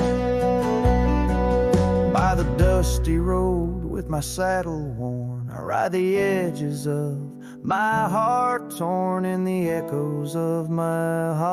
dusty road with my saddle worn. I ride the edges of my heart torn in the echoes of my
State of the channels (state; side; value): identical; both; correlation 1.00